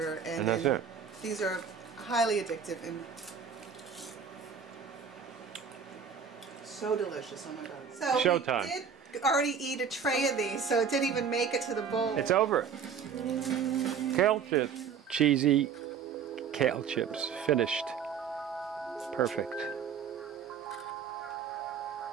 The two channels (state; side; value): quieter; left; 6.8 dB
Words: And that's it. These are highly addictive and so delicious. Oh my God. So Showtime. we did already eat a tray of these, so it didn't even make it to the bowl. It's over. Kale chips. Cheesy kale chips. Finished. Perfect.